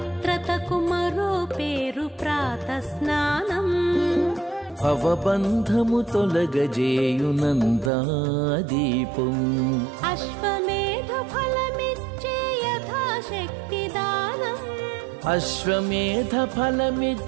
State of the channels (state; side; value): drops out; left; at 7.9 s